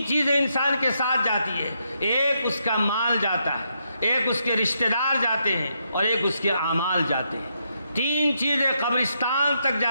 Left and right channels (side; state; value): both; inverted; correlation -0.79